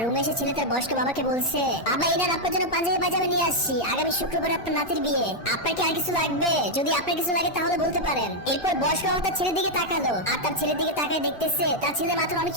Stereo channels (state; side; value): late; right; 2.4 ms